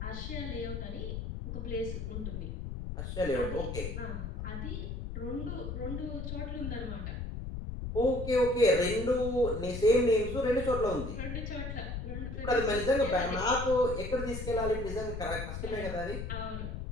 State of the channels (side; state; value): left; noise; rumble, 5 dB below the sound